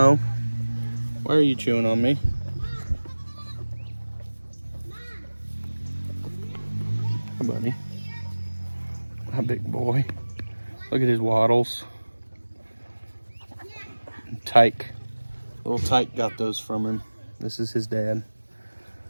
why are you chewing on me? Hi, buddy. Hi, big boy. Look at his waddles. Tyke. Little Tyke got those from him. This is his dad.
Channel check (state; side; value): inverted; both; correlation -1.00